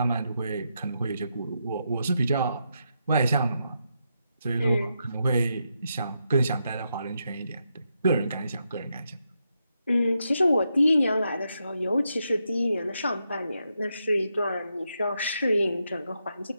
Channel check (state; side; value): inverted; both; correlation -0.83